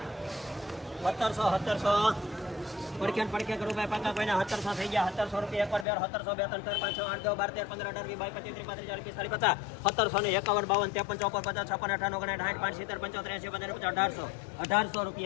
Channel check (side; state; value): right; drops out; at 5.9 s